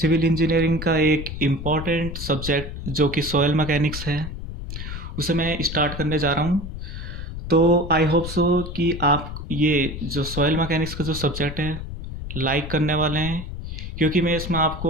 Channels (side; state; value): left; noise; rumble, 8 dB below the sound